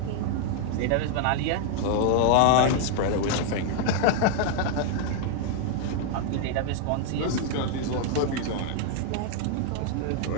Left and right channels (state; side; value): different; both; correlation 0.00